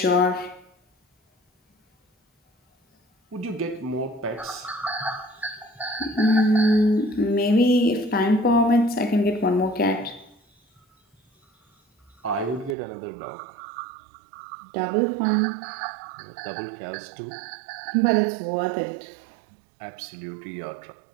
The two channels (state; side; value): drops out; left; at 12.8 s